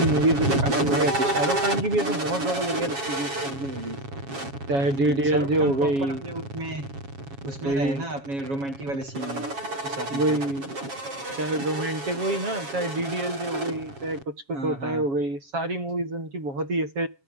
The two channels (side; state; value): left; late; 7.3 ms